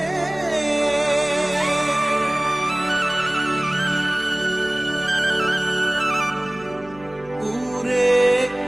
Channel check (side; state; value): left; noise; hum, 22 dB below the sound